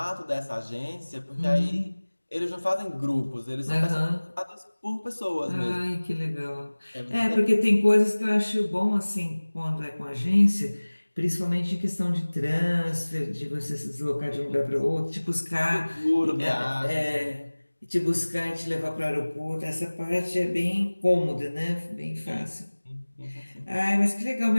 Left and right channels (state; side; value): inverted; both; correlation -1.00